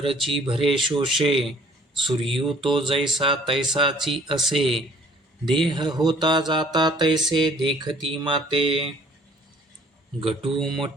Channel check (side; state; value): both; normal; correlation 0.57